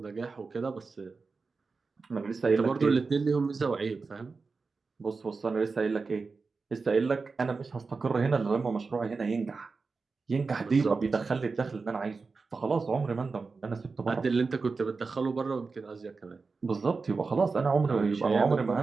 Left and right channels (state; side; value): quieter; left; 4.4 dB